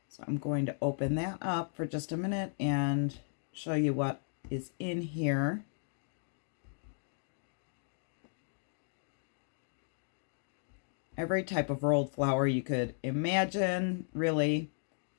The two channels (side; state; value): right; silent; digital silence